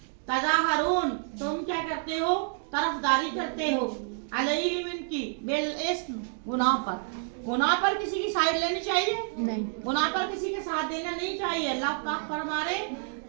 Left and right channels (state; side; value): silent; left; 59 dB below the other